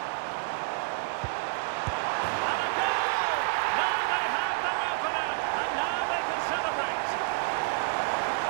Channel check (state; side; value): silent; left; digital silence